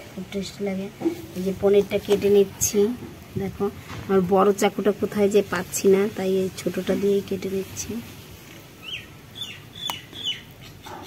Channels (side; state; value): both; identical; correlation 1.00